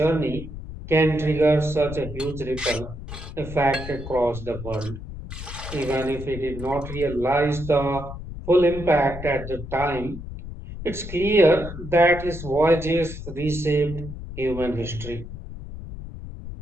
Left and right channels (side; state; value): left; noise; rumble, 10 dB below the sound